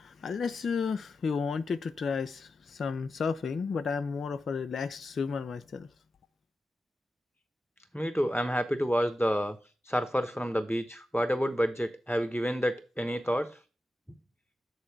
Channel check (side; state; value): both; normal; correlation 0.91